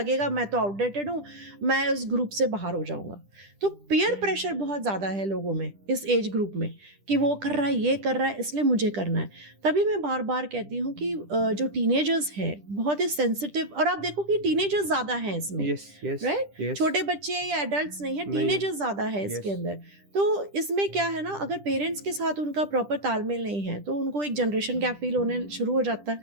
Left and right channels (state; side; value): late; left; 10 ms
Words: मैं तो आउटडेटेड हूँ, मैं उस ग्रुप से बाहर हो जाऊँगा। तो पीयर प्रेशर बहुत ज़्यादा है लोगों में इस एज ग्रुप में कि वो कर रहा है, ये कर रहा है, इसलिए मुझे करना है। तभी मैं बार बार कहती हूँ कि जो टीनेजर्स हैं बहुत ही सेंसिटिव, और आप देखो कि टीनेजर्स ज़्यादा हैं इसमें, राइट? छोटे बच्चे या एडल्ट्स नहीं है, टीनेजर्स ज़्यादा है इसके अंदर। तो इसमें क्या है ना, अगर पेरेंट्स के साथ उनका प्रॉपर तालमेल नहीं है तो उनको एक जनरेशन गैप फील होने शुरू हो जाता